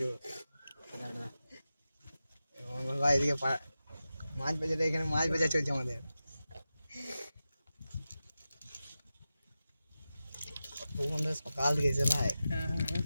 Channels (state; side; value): inverted; both; correlation -0.93